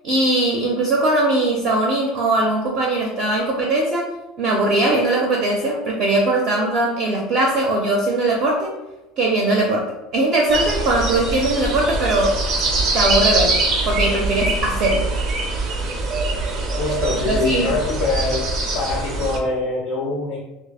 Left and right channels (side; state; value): both; normal; correlation 0.37